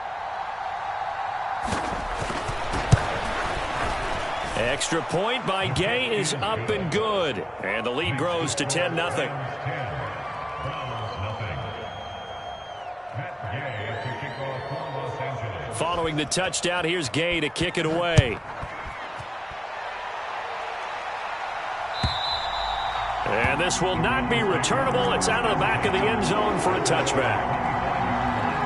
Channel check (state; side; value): identical; both; correlation 1.00